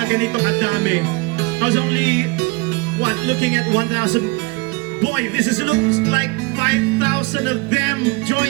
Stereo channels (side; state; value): left; quieter; 25.9 dB